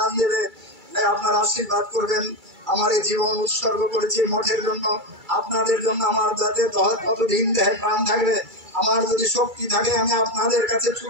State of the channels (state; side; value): late; left; 2.3 ms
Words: দেবে। তাই আপনারা আশীর্বাদ করবেন। আমার এই জীবন উৎসর্গ করেছি মঠের জন্য, আপনাদের জন্য। আমার যাতে কতদিন দেহে প্রাণ থাকবে, আমার যদি শক্তি থাকে, আমি আপনাদের কাছে